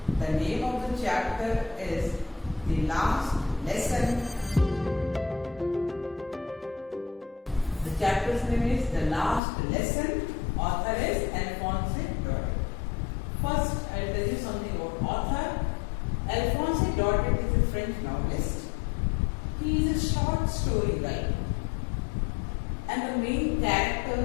The name of the chapter is The Last Lesson. The chapter's name is The Last Lesson. Author is Alphonse Daudet. First, I will tell you something about author. Alphonse Daudet is a French novelist. He is a short story writer. And the main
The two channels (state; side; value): drops out; right; at 9.4 s